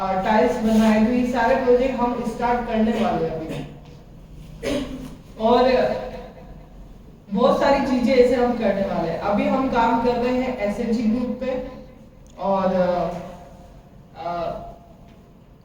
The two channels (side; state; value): both; identical; correlation 1.00